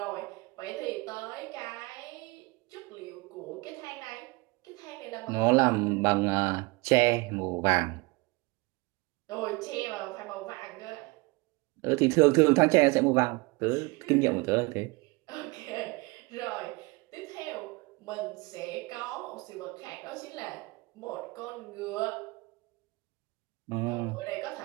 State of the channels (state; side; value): quieter; left; 25.5 dB